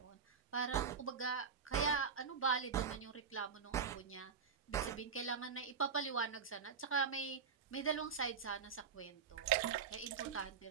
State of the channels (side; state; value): left; quieter; 6.2 dB